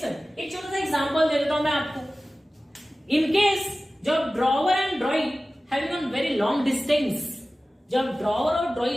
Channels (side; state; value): both; normal; correlation 0.96